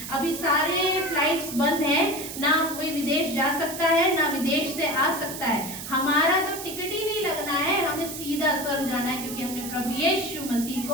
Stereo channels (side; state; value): right; noise; hiss, 9 dB below the sound